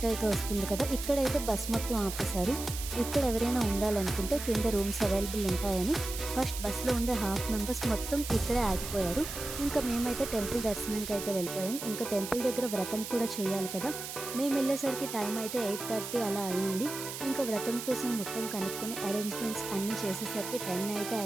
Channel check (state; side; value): noise; right; hiss, 8 dB below the sound